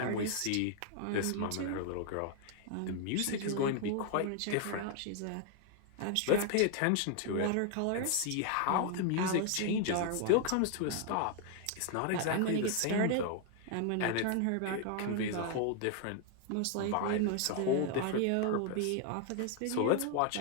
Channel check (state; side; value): different; both; correlation 0.00